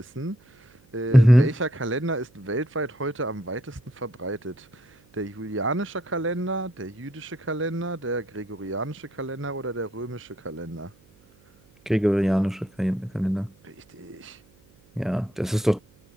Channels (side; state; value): right; noise; hum, 30 dB below the sound